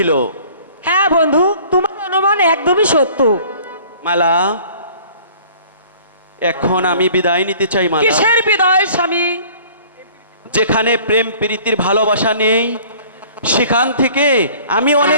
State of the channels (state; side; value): inverted; both; correlation -0.50